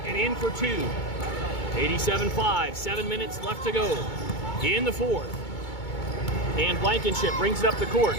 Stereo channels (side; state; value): right; late; 2.2 ms